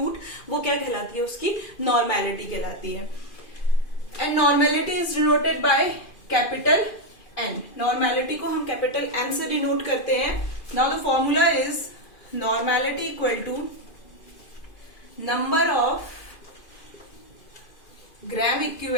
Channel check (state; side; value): late; right; 2.5 ms